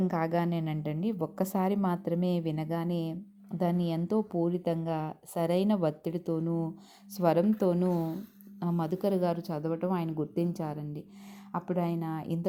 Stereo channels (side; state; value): both; identical; correlation 1.00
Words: కాగానేనంటండి, ఒక్కసారి మాత్రమే వినగానే దాన్ని ఎంతో పూరితంగా సరైన ఒత్తిడితోనూ, స్వరంతోనూ మధుకర్ గారు చదవటం ఆయన గుర్తించారండి. అప్పుడు ఆయన